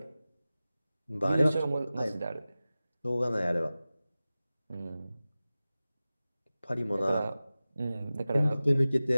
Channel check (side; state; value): both; inverted; correlation -0.96